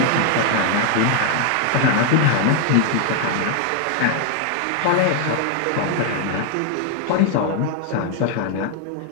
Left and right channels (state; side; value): different; both; correlation 0.00